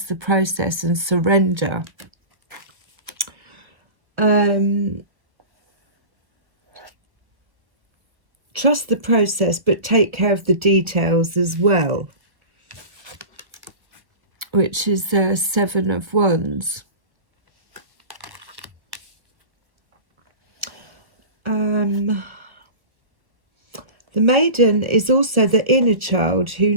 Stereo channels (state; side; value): late; left; 1.2 ms